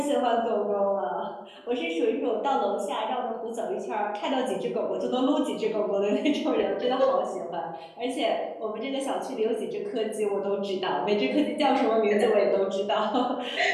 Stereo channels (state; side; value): identical; both; correlation 1.00